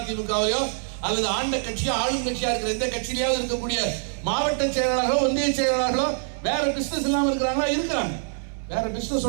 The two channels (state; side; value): silent; left; digital silence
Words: திமுகவிலையோ அல்லது ஆண்ட கட்சியோ ஆளும் கட்சியா இருக்கிற எந்த கட்சியிலேயாவது இருக்கக்கூடிய மாவட்ட செயலாளர்களோ ஒன்றிய செயலாளர்களோ வேற பிசினஸ் இல்லாம இருக்கிறாங்களா? இருக்கிறாங்க. வேற